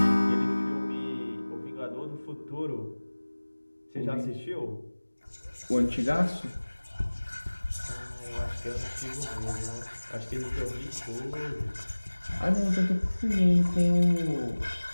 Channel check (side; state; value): both; inverted; correlation -1.00